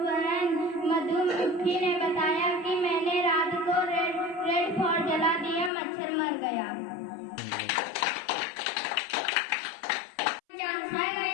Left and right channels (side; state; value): right; drops out; at 5.7 s